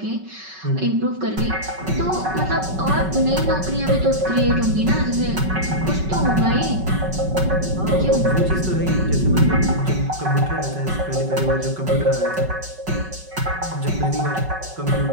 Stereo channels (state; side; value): late; left; 5.3 ms